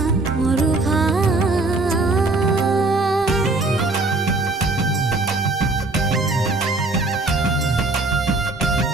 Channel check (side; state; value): left; quieter; 3.1 dB